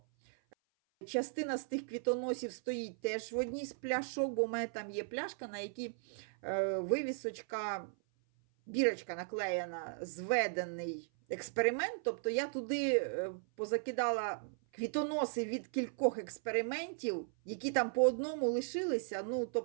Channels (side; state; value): left; silent; 53 dB below the other